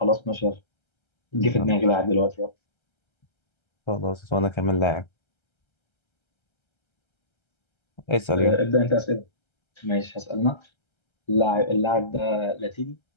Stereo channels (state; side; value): late; right; 1.3 ms